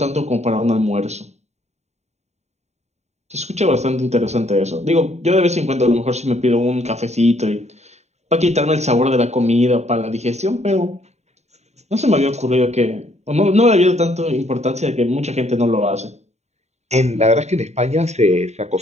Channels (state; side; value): late; left; 0.32 ms